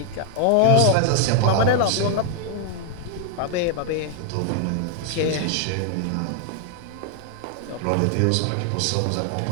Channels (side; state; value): both; different; correlation 0.00